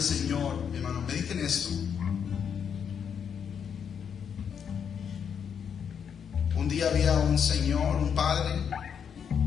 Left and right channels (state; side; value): quieter; right; 7.5 dB